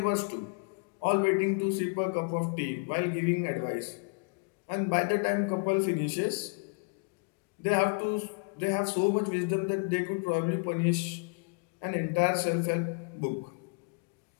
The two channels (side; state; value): right; quieter; 35.1 dB